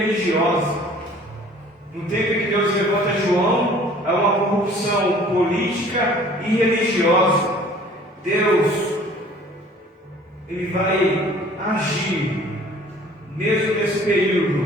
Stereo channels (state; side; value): normal; both; correlation 0.51